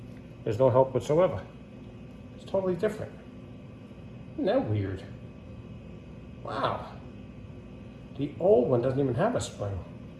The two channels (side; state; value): both; identical; correlation 1.00